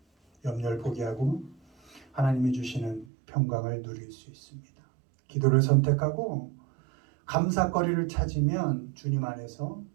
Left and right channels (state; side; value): drops out; left; at 3.1 s